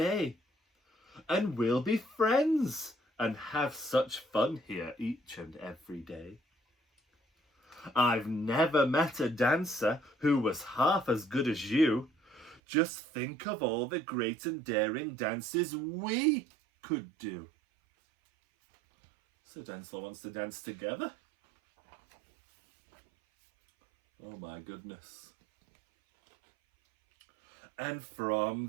and we'll be friends and have such fun here each and every day. I've never met a dancer who was half as good as you. Just think of all the great and daring dances we could do. So Dancealot wants to dance together. Oh my goodness. And from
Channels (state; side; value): drops out; left; at 12.6 s